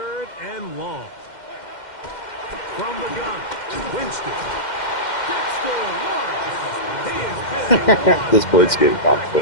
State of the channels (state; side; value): late; right; 2.1 ms